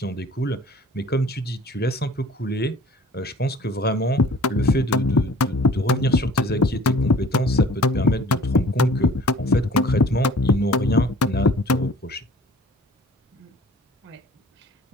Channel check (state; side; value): normal; both; correlation 0.49